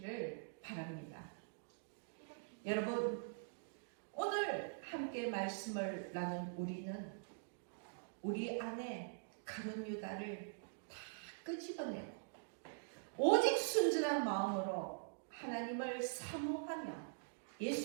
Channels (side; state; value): left; silent; digital silence